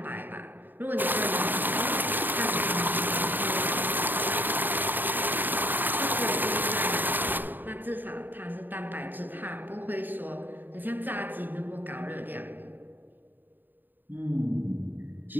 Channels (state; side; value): late; left; 0.091 ms